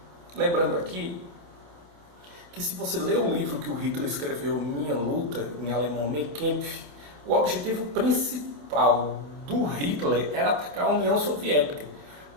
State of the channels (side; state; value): left; late; 27 ms